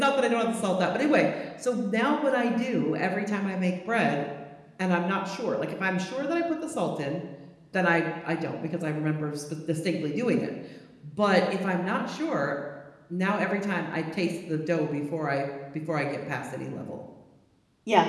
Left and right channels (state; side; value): identical; both; correlation 1.00